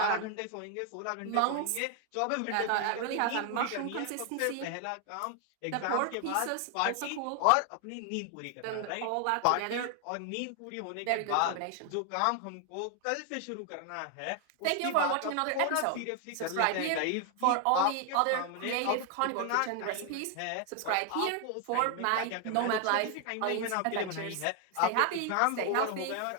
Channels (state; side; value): different; both; correlation 0.00